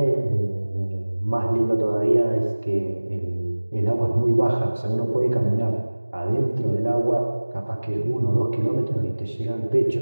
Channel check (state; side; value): inverted; both; correlation -1.00